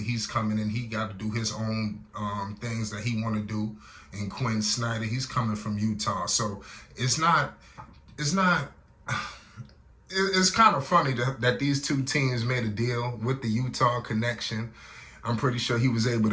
he's coming in. He got to do his own things that he want to do. And Quinn Snyder, he's coming from Utah. So it's kind of funny that these two teams made a deal with the Utah connection. I'm pretty sure he was able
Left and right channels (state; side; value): identical; both; correlation 1.00